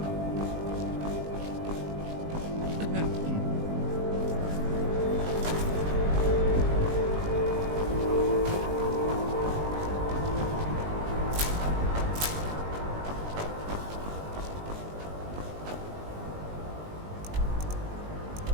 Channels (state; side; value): late; left; 20 ms